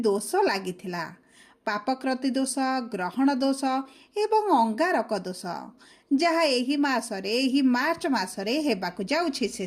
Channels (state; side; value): identical; both; correlation 1.00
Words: लागिथिला पापकृति दोष ग्रहण दोष एवं अंगारक दोष जहा एही मासरे एही मार्च मासरे हेबाकु जाउछि